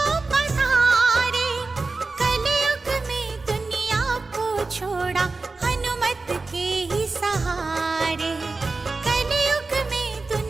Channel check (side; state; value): left; quieter; 3.7 dB